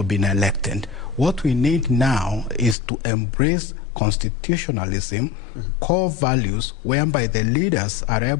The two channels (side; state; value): right; drops out; at 2.8 s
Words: been elected. What we need now is to embrace constitutionalism, core values whereby the leaders are